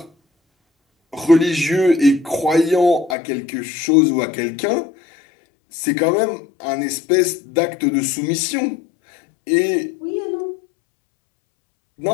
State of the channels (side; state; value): right; drops out; at 3.2 s